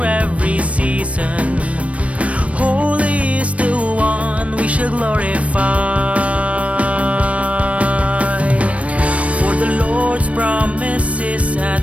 every season. Holy is the one we shall glorify. For the Lord's promise is at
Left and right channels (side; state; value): left; late; 0.064 ms